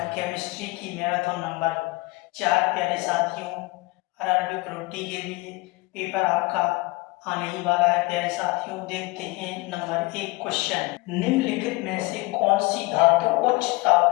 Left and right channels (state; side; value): quieter; right; 22.8 dB